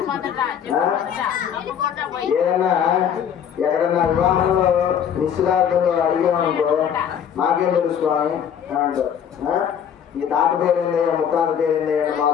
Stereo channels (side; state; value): right; quieter; 8.5 dB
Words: ఏదన్నా ఎక్కడన్నా వివాహంలో నిశ్చితార్థంలో అడిగామనుకో మాకేం తెలుసు స్వామి అని అంటారు. ఈ తాత పేరేందయ్యా ముత్తాత పేరేందయ్యా మా